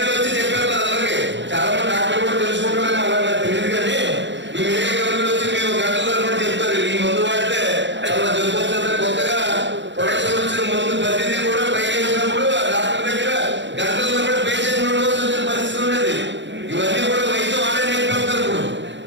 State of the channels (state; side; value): late; left; 0.53 ms